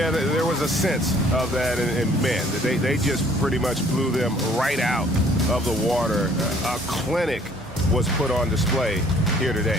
there was a sense of that, and man, they just pretty much blew them right out of the water. A clinic was put on display here today.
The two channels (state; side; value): normal; both; correlation 0.58